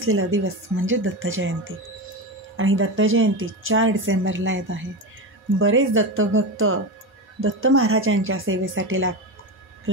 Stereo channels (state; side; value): normal; both; correlation 0.19